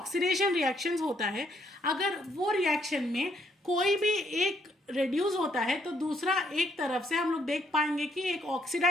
रिएक्शंस होता है, अगर वो रिएक्शन में कोई भी एक रिड्यूस होता है तो दूसरा एक तरफ से हम लोग देख पाएंगे कि एक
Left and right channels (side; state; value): both; normal; correlation 0.71